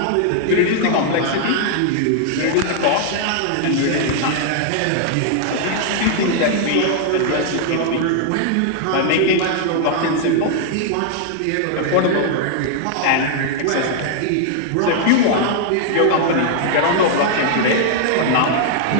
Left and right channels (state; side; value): different; both; correlation -0.01